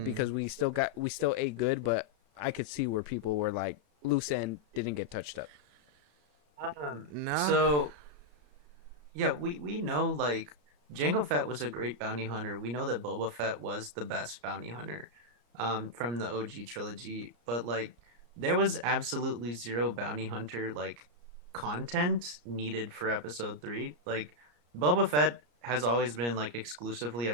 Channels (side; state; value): left; late; 34 ms